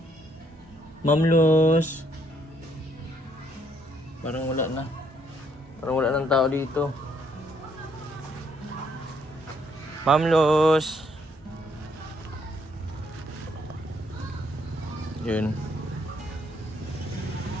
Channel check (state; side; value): normal; both; correlation 0.70